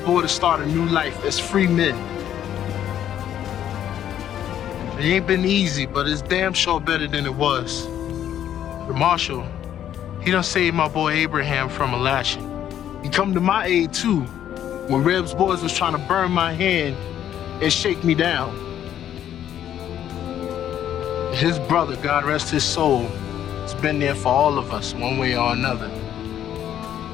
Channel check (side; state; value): right; quieter; 10.6 dB